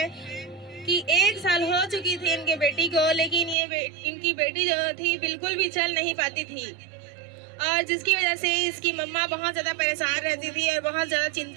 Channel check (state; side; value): drops out; left; at 3.6 s